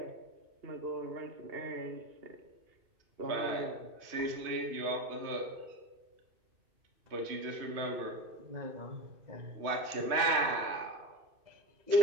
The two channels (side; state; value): left; late; 3.1 ms